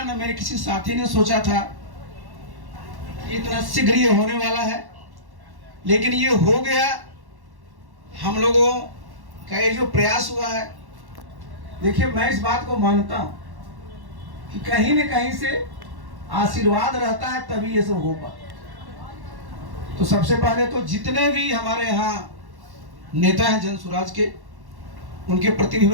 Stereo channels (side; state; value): left; late; 1.1 ms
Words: न मेरे किसी साथी ने सोचा था इतना शीघ्र ये होने वाला है, लेकिन ये हो गया। हम लोगों का ये जो प्रयास हुआ है, देखिए मैं इस बात को मानता हूं कि कहीं न कहीं से आशीर्वाद रहता है तभी ये सब हो पाता। तो सबसे पहले तो जितने भी हमारे यहाँ नेता हैं जनसुराज के, उनके प्रति भी